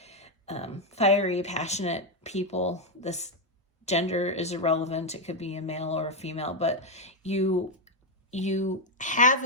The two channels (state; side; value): normal; both; correlation 0.03